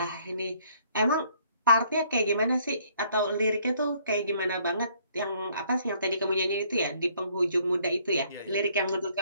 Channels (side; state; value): both; inverted; correlation -0.63